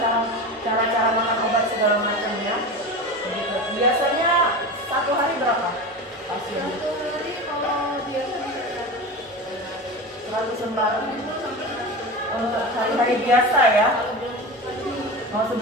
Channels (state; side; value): normal; both; correlation 0.27